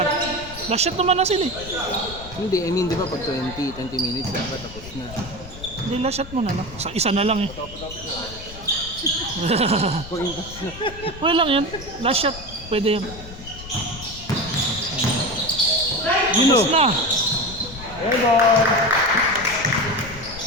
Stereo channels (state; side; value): noise; left; rumble, 15 dB below the sound